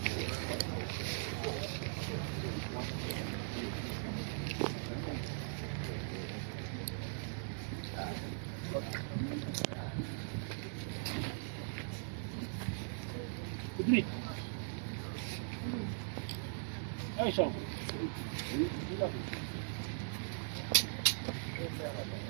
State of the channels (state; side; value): silent; left; 51 dB below the other